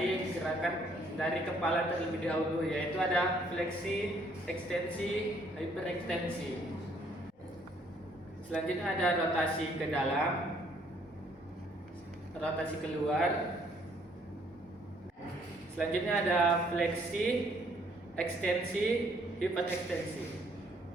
gerakan dari kepala terlebih dahulu, yaitu ada fleksi, ekstensi, hiperekstensi. Selanjutnya ada rotasi ke dalam, rotasi keluar. Selanjutnya ada fleksi, ekstensi, hiperekstensi.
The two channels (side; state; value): both; normal; correlation 0.65